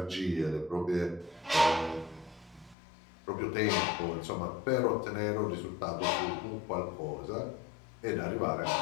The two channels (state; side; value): drops out; right; at 2.8 s